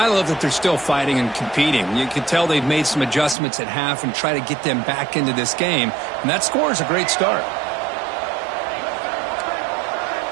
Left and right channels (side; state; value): left; drops out; at 3.4 s